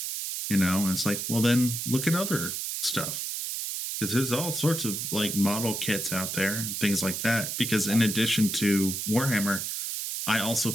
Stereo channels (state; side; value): noise; right; hiss, 3 dB below the sound